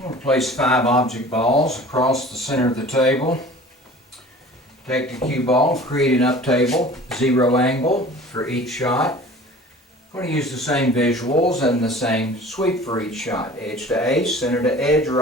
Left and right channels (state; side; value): normal; both; correlation 0.44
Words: I'm going to place 5 object balls across the center of the table. Take the cue ball, create an up table, 0 angle for each shot. I'm going to use the same visuals and the same sweep for each shot. Edge to ace, center to edge,